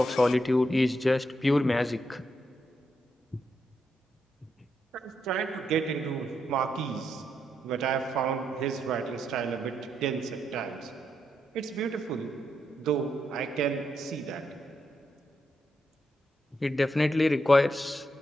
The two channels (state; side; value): normal; both; correlation 0.81